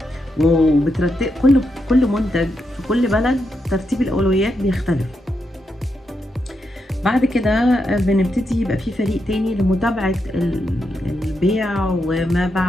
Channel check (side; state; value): both; normal; correlation 0.83